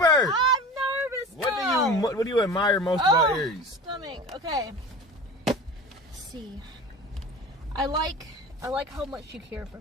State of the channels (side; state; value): both; normal; correlation 0.35